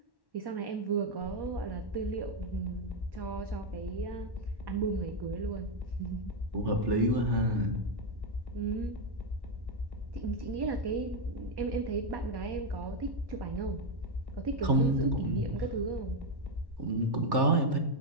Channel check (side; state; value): left; late; 1.1 ms